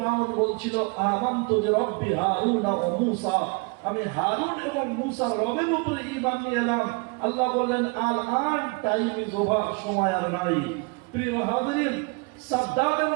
বলছিল আমানতু বিরাব্বি হারুন ওয়া মূসা, আমি হারুন এবং মূসার রবের উপরে ঈমান নিয়ে এলাম। আল্লাহ বললেন আল আন টাইম ইজ ওভার, সময় আর নাই। প্রিয় হাজরিন, সাদ্দামের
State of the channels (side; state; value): left; quieter; 29.9 dB